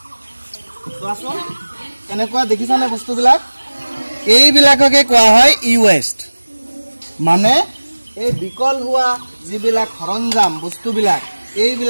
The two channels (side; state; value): both; inverted; correlation -1.00